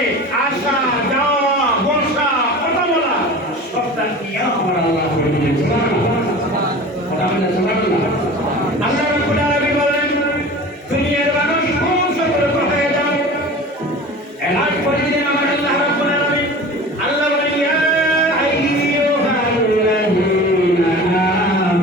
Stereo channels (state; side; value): normal; both; correlation 0.37